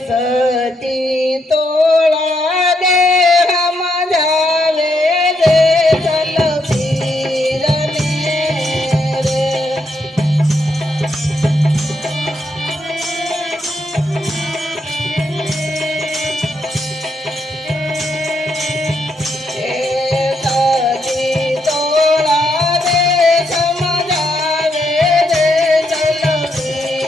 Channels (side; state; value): both; normal; correlation 0.78